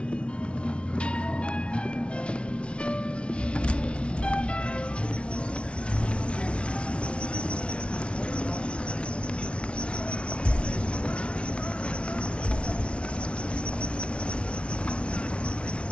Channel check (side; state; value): right; late; 0.059 ms